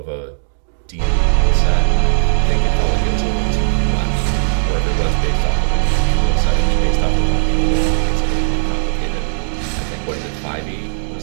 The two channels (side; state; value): left; silent; digital silence